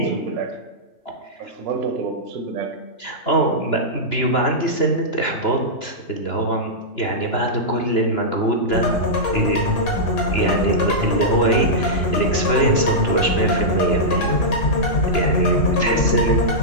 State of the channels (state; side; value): late; right; 2.9 ms